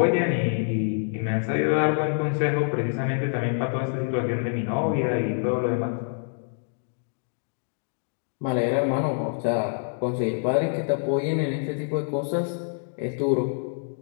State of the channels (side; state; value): right; silent; digital silence